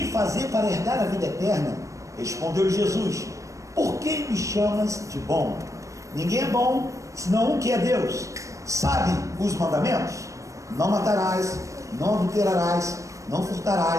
de fazer para herdar a vida eterna? Respondeu Jesus: por que me chamas de bom? Ninguém é bom, senão um que é Deus. Sabe os mandamentos? Não matarás, não adulterarás, não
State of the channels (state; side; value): late; left; 0.15 ms